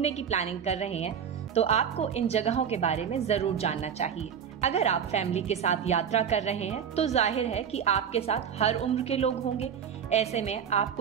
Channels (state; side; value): quieter; left; 7.9 dB